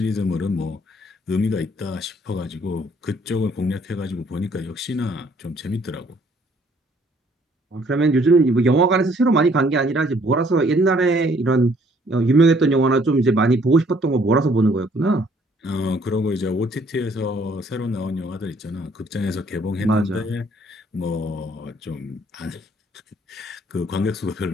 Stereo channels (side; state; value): both; normal; correlation 0.63